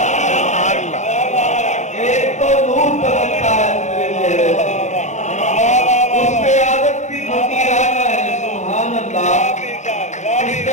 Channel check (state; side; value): late; right; 0.34 ms